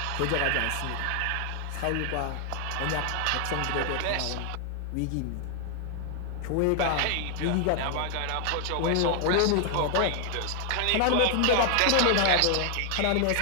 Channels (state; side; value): different; both; correlation 0.00